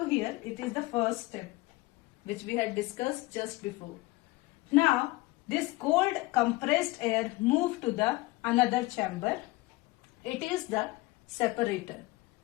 here, it is the first step which we had discussed just before. Now this cold compressed air moved to the another chamber. It is the separator.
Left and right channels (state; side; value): quieter; right; 21.0 dB